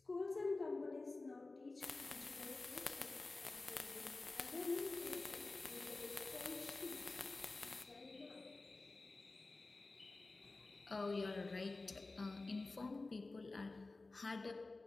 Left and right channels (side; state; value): right; quieter; 3.4 dB